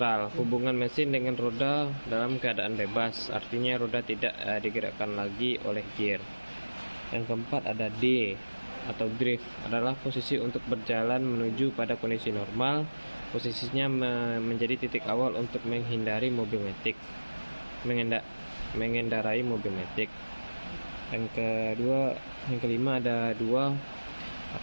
hubungan mesin dengan roda dalam keadaan bebas, artinya roda tidak digerakkan lagi oleh gear. Yang keempat ada D atau drift, adalah posisi untuk berjalan menuju pada kondisi normal, posisinya menjadi titik awal untuk menghindari mobil metik, mengendarai mobil metik. Yang kelima ada dua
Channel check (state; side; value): inverted; both; correlation -1.00